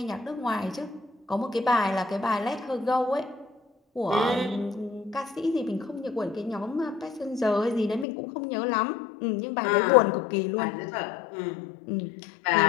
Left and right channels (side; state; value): right; drops out; at 8.1 s